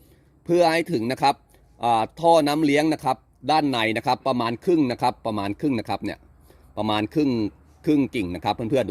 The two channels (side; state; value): both; identical; correlation 1.00